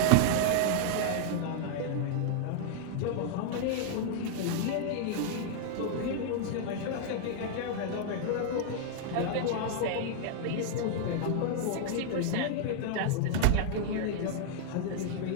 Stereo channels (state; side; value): different; both; correlation -0.01